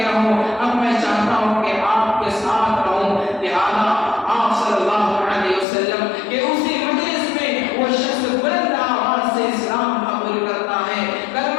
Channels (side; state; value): right; drops out; at 5.7 s